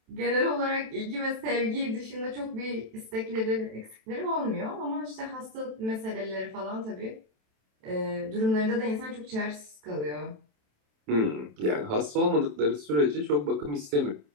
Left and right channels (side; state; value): left; late; 27 ms